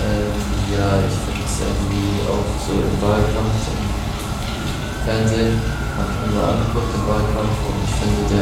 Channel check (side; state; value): both; identical; correlation 1.00